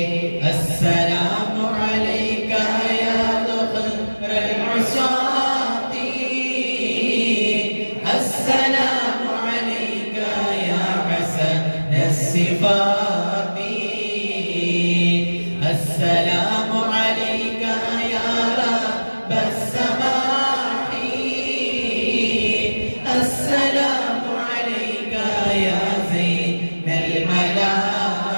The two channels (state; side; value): inverted; both; correlation -1.00